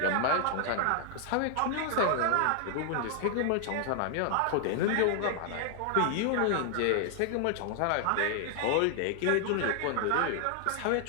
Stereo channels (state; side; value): different; both; correlation 0.00